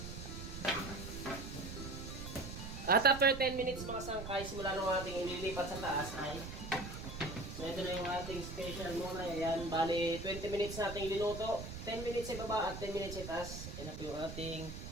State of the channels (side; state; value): right; noise; rumble, 8 dB below the sound